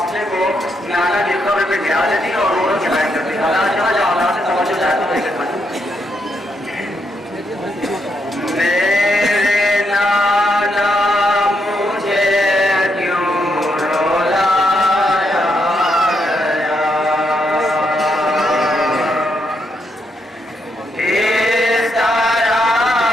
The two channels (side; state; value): both; normal; correlation 0.79